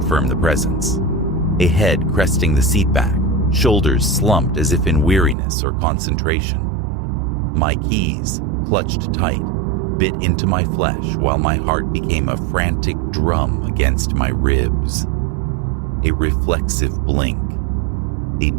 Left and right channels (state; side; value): drops out; left; at 5.4 s